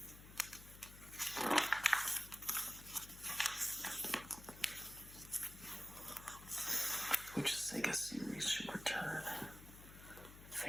Which Sega series should return?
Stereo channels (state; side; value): noise; left; hum, 16 dB below the sound